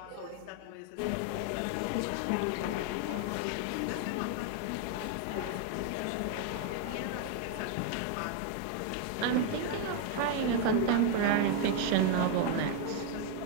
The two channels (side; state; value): both; different; correlation 0.01